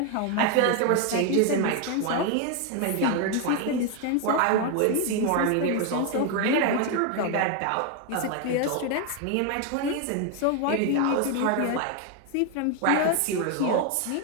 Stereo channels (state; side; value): different; both; correlation 0.01